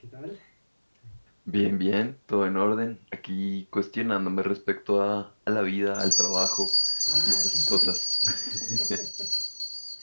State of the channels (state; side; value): inverted; both; correlation -1.00